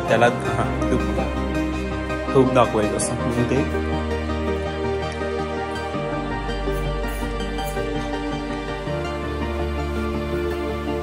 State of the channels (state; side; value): identical; both; correlation 1.00